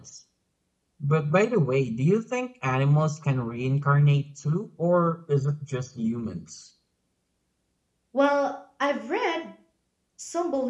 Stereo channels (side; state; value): both; identical; correlation 1.00